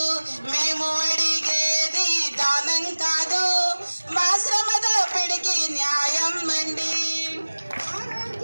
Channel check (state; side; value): inverted; both; correlation -1.00